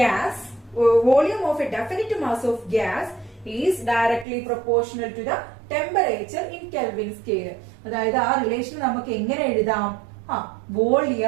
volume of a definite mass of gas is directly proportional to the temperature in Kelvin scale. അതായത് ആ റിലേഷൻ നമുക്ക് എങ്ങനെ എഴുതാം?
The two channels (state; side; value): drops out; left; at 4.2 s